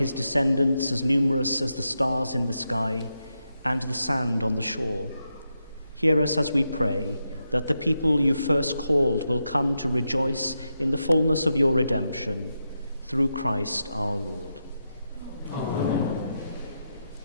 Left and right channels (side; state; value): both; inverted; correlation -0.86